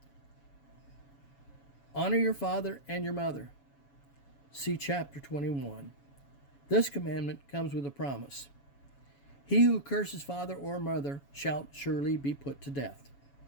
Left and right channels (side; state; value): right; late; 7.1 ms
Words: Honor your father and your mother. See chapter 21. This commandment comes with a promise. He who curses father or mother shall surely be put to death.